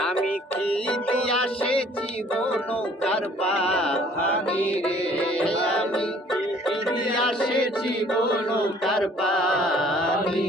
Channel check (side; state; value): both; normal; correlation 0.56